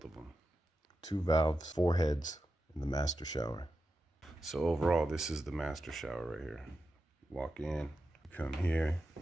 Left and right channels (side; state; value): both; normal; correlation 0.90